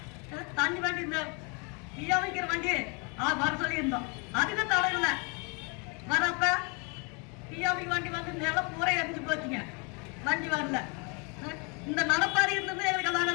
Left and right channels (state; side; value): quieter; right; 33.0 dB